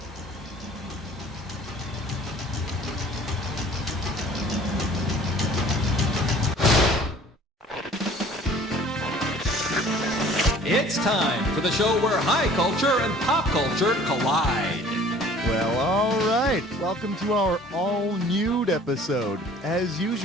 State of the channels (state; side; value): normal; both; correlation 0.50